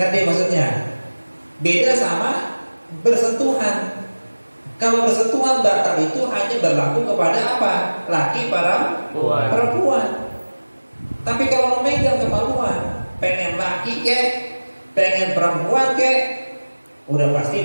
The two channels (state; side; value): inverted; both; correlation -1.00